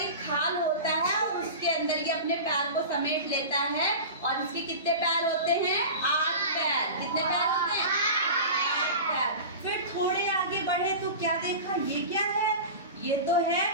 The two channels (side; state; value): both; inverted; correlation -0.31